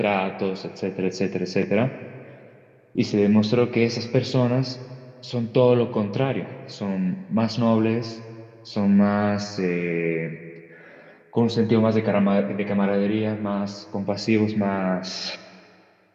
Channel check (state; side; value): identical; both; correlation 1.00